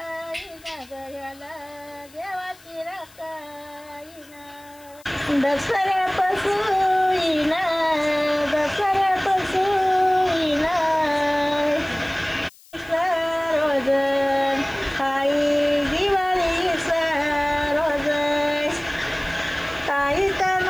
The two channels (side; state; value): left; noise; hiss, 25 dB below the sound